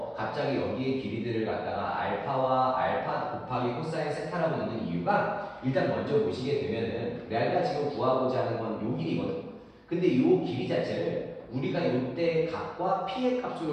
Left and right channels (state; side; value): identical; both; correlation 1.00